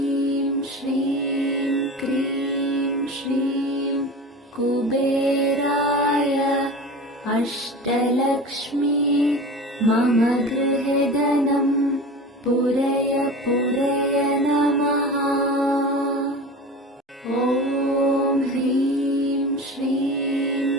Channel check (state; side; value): normal; both; correlation 0.33